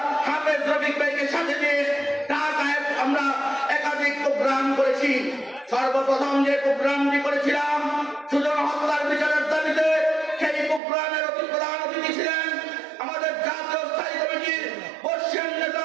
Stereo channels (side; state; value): left; drops out; at 10.8 s